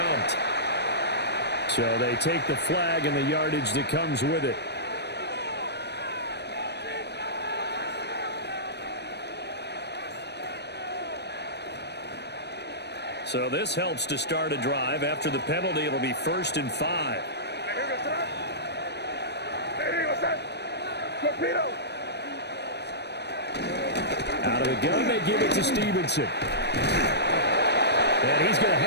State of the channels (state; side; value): late; right; 0.49 ms